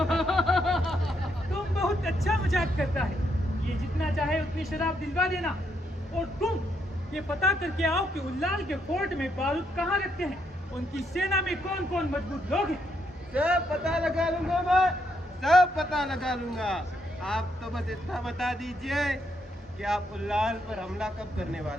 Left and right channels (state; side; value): normal; both; correlation 0.76